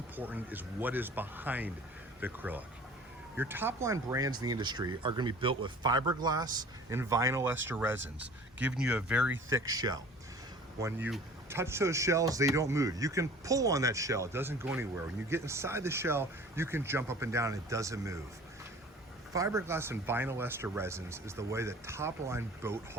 is what is behind the acrylic. Your top line brands in the industry are going to be built with fiberglass and vinyl ester resins, giving you a very thick shell. When you touch those shells, they don't move. You can pull on that shell, it doesn't go anywhere. When you get inside the shell, you can jump up and down and it doesn't move. Fiberglass and vinyl ester resins is the way that top line boat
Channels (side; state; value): both; normal; correlation 0.46